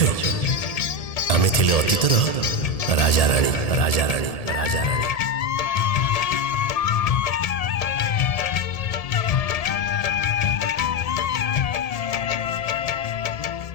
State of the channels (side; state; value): right; late; 1.7 ms